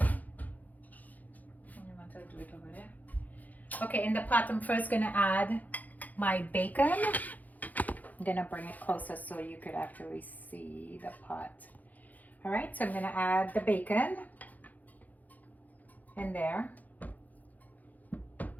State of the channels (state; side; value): late; right; 0.080 ms